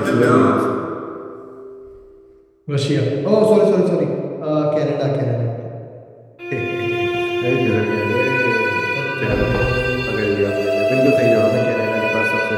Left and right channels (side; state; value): both; identical; correlation 1.00